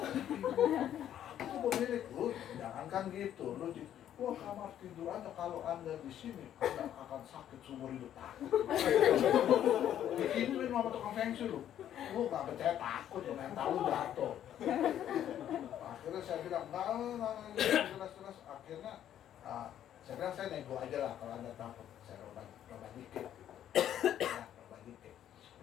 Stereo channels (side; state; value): right; quieter; 10.8 dB